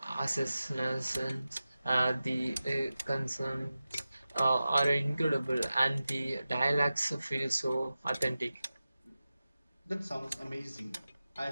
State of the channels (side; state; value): both; inverted; correlation -0.94